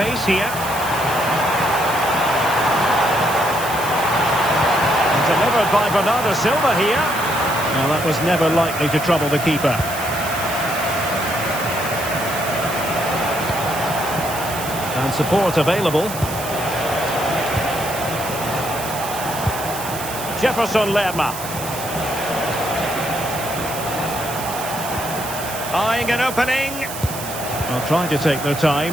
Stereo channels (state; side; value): noise; right; hiss, 9 dB below the sound